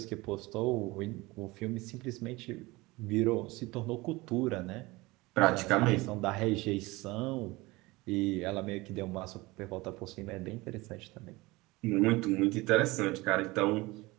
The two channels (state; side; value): quieter; left; 21.8 dB